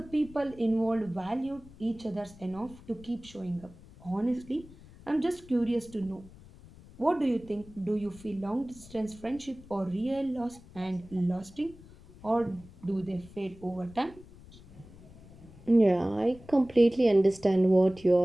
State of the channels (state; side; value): noise; left; rumble, 21 dB below the sound